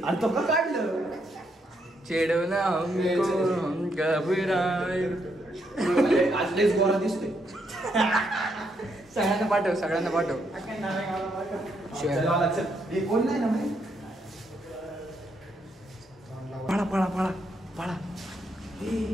तो का काढलं चेडवला आज लयच गोरा दिसतोय. सगळ्यांना पाठव कोण नाही ना पळा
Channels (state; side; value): normal; both; correlation 0.76